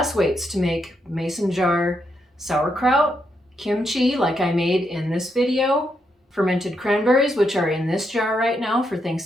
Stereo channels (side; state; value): both; normal; correlation 0.80